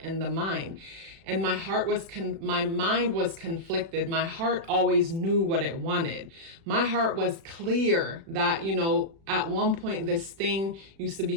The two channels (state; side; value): late; left; 36 ms